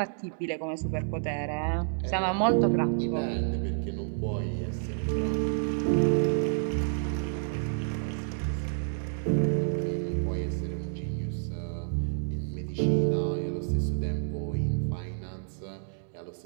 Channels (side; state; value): left; silent; digital silence